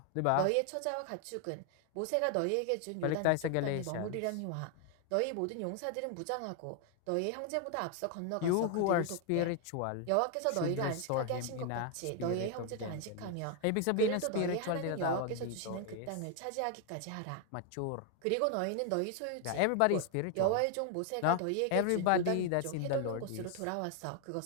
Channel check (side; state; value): both; different; correlation 0.00